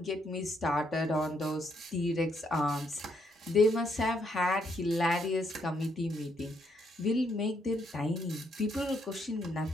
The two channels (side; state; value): both; normal; correlation 0.74